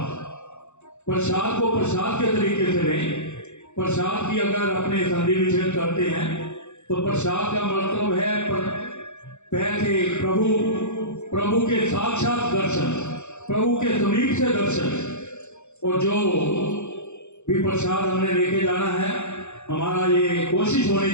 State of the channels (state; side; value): late; right; 0.83 ms